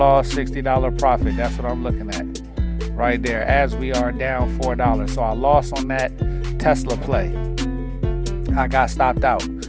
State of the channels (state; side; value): identical; both; correlation 1.00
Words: $60 profit. That's what I'm looking at right there as we are down $4. So I lost on that Tesla play. I got stopped out.